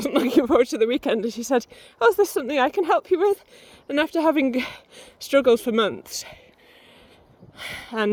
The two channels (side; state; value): both; identical; correlation 1.00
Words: looking forward to the weekend. And she said, oh, is this something I can help you with? And after having struggled for months and